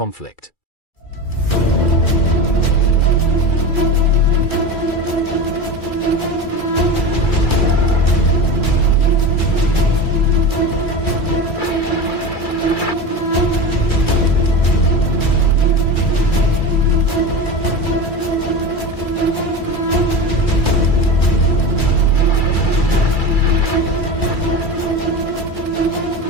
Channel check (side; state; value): right; late; 2.3 ms